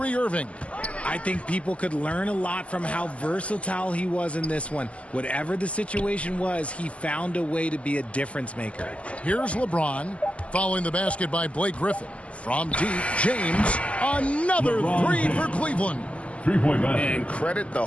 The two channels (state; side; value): late; right; 0.062 ms